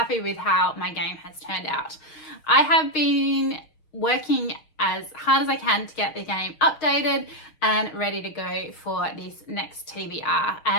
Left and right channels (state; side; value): late; right; 6.4 ms